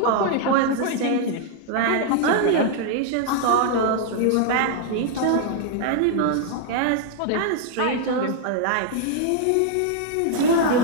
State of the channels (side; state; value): both; different; correlation 0.00